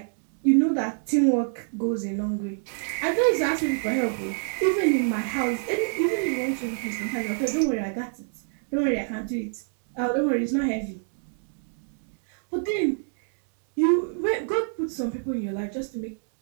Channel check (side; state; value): left; silent; 60 dB below the other